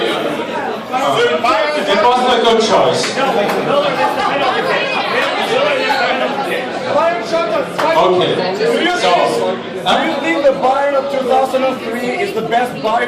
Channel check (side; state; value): both; identical; correlation 1.00